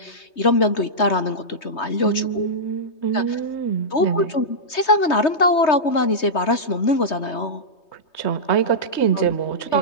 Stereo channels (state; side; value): late; right; 3.2 ms